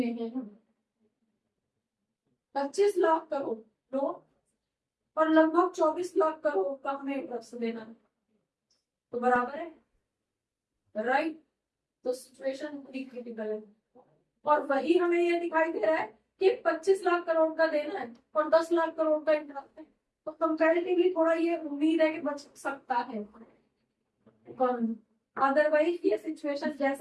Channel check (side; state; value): both; identical; correlation 1.00